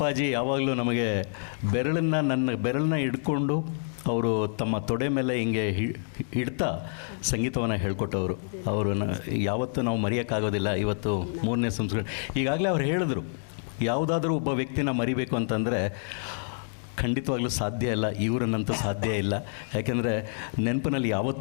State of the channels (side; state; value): right; silent; digital silence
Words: ಯಾವಾಗಲೂ ನಮಗೆ ನನ್ನ ಬೆರಳನ್ನ ಹಿಡ್ಕೊಂಡು ಅವರು ತಮ್ಮ ತೊಡೆ ಮೇಲೆ ಹಿಂಗೆ ಹಿಡ್ತಾ ಸಂಗೀತವನ್ನು ಹೇಳ್ಕೊಟ್ಟವರು. ಅವರನ್ನು ಯಾವತ್ತೂ ನಾವು ಮರೆಯೋಕ್ಕಾಗೋದಿಲ್ಲ. ಇವತ್ತು 3ನೇ ಸಂಸ್ಕೃತಿ. ಈಗಾಗಲೇ ಅವ್ರು ಹೇಳಿದ್ರು, ಯಾವುದಾದ್ರೂ ಒಬ್ಬ ವ್ಯಕ್ತಿನ ಮರಿಬೇಕು ಅಂತಂದರೆ ಖಂಡಿತವಾಗ್ಲೂ ಸಾಧ್ಯ ಇಲ್ಲ, ಇವರನ್ನಂತೂ ಸಾಧ್ಯ ಇಲ್ಲ. ಯಾಕೆಂದರೆ ನೆನಪಿನಲ್ಲಿ